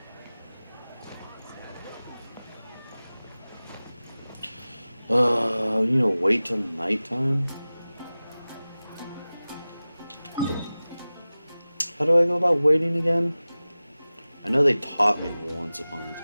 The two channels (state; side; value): inverted; both; correlation -0.97